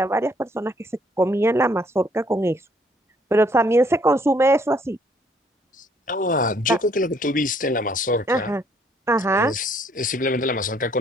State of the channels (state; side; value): normal; both; correlation 0.65